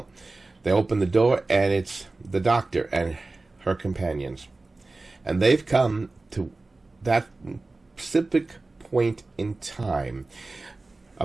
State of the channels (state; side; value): quieter; left; 3.3 dB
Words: they open the door, and it's the doctor and her companions. And they've come to that specific point in time,